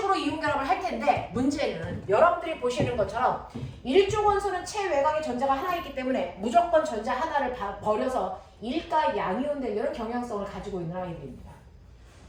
이온결합을 할 텐데 문제는 여러분들이 보시는 것처럼 일족 원소는 체외곽에 전자가 하나 있기 때문에 무조건 전자 하나를 버려서 일가 양이온 되려는 경향성을 가지고 있는 아이들입니다.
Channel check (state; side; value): identical; both; correlation 1.00